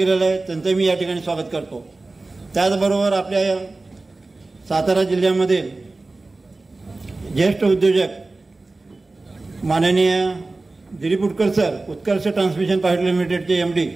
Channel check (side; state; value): left; quieter; 3.3 dB